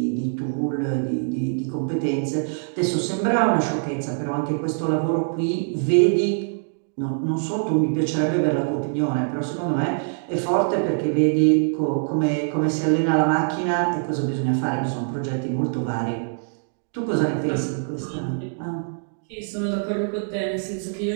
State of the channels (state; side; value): silent; left; digital silence